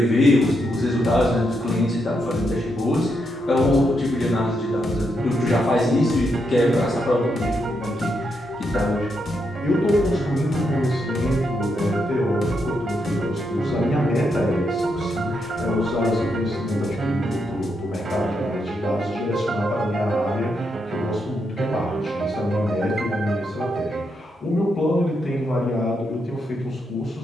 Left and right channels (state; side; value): normal; both; correlation 0.81